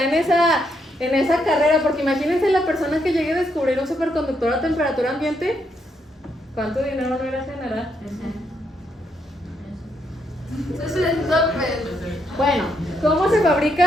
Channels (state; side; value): normal; both; correlation 0.77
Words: en esa carrera, porque imagínense la persona que llegue a descubrir un superconductor a temperatura ambiente, ¿cuánto dinero no irá a generar? Bueno, ¿cómo se